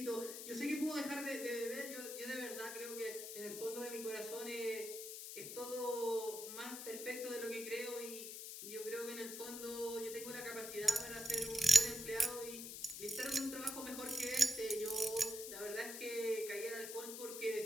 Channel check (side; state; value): left; noise; hiss, 8 dB below the sound